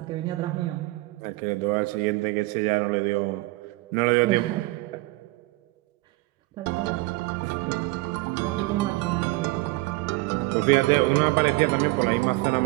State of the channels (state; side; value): quieter; left; 21.6 dB